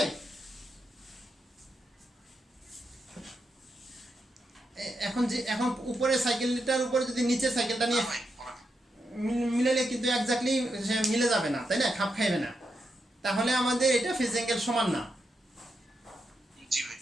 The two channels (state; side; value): normal; both; correlation 0.84